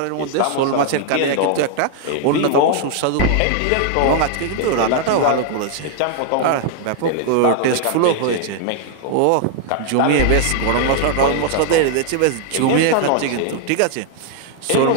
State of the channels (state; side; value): different; both; correlation 0.00